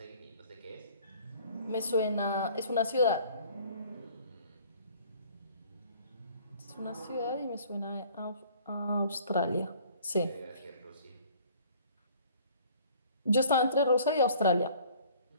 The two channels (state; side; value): inverted; both; correlation -0.53